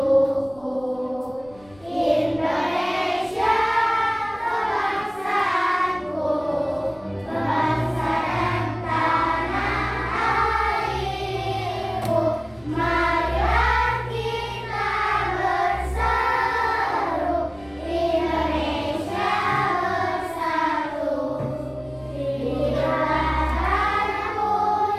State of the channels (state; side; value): noise; left; rumble, 26 dB below the sound